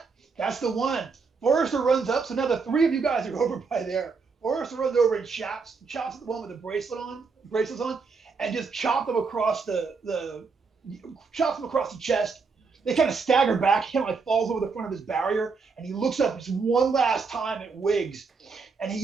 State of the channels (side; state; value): left; quieter; 4.8 dB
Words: That's the one. Forrester runs up, so now the 3 of you guys are over by there. Forrester runs over and chops at the one with the bracelets on, and just chops them across the chest. They kind of stagger back. He falls over the front of his barrier, and he looks up just one last time at Wiggs, and he